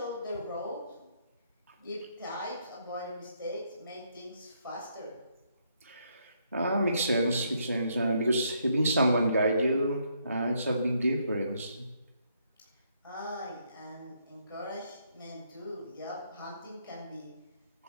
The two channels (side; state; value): both; inverted; correlation -0.73